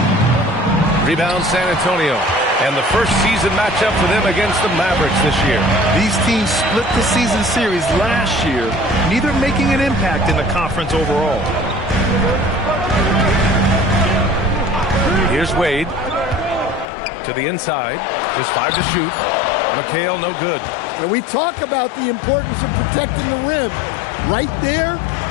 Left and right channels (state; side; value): drops out; right; at 16.9 s